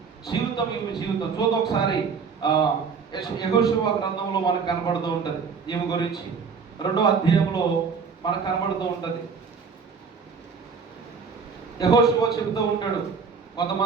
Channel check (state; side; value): quieter; left; 5.6 dB